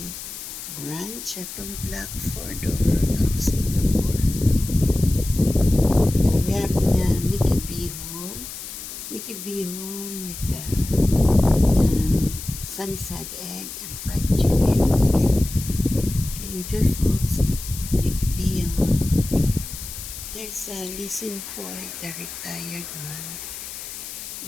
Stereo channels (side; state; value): left; noise; hiss, 10 dB below the sound